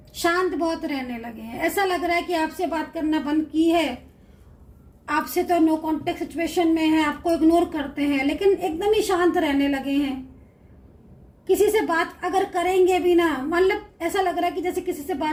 शांत बहुत रहने लगे हैं। ऐसा लग रहा है कि आपसे बात करना बंद की है, आपसे तो नो कांटेक्ट सिचुएशन में है, आपको इग्नोर करते हैं, लेकिन एकदम ही शांत रहने लगे हैं। किसी से बात अगर करेंगे भी ना, मतलब ऐसा लग रहा है कि जैसे किसी से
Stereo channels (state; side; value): identical; both; correlation 1.00